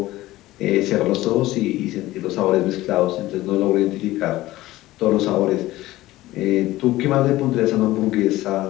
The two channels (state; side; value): quieter; right; 16.8 dB